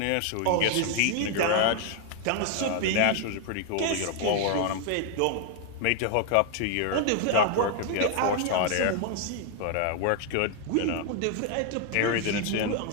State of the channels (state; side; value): different; both; correlation 0.00